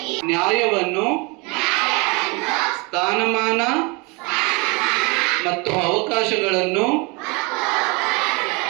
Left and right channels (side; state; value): left; quieter; 28.5 dB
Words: ನ್ಯಾಯವನ್ನು, ಸ್ಥಾನಮಾನ ಮತ್ತು ಅವಕಾಶಗಳನ್ನು